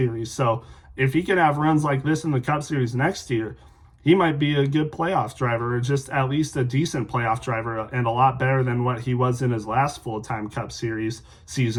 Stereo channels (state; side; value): identical; both; correlation 1.00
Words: So if he can have runs like this in the Cup Series next year, he might be a good playoff driver, or just at least a decent playoff driver, and a lot better than what he was in his last full-time Cup Series